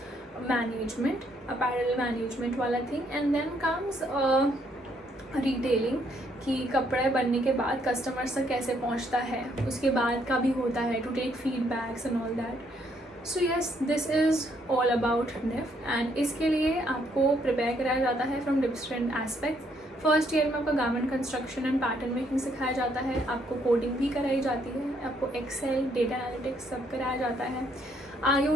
management, apparel management वाला thing. And then comes retailing कि कपड़े बनने के बाद कस्टमर्स तक कैसे पहुंचता है, उसके बाद का भी होता है to take feedbacks and all that. So yes, this is all about NIFT and इसके लिए आपको प्रिपेयर कराया जाता है from different aspects. First year में आपका garment construction and pattern making सिखाया जाता है, आपको कोडिंग भी कराई जाती है, आपको एक्सेल, डेटा एनालिटिक्स सब कराया जाता है,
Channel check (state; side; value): normal; both; correlation 0.71